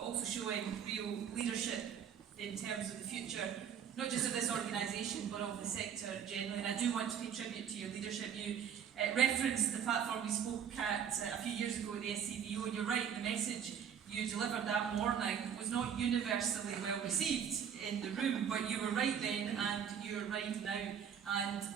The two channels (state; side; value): quieter; left; 8.1 dB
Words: also showing real leadership in terms of the future not just of this organisation, but of the sector generally. And I do want to pay tribute to your leadership. You referenced the platform we spoke at a few years ago at the SCVO, and you're right, the message you delivered that morning was not universally well received in the room, but you were right then and you're right now. And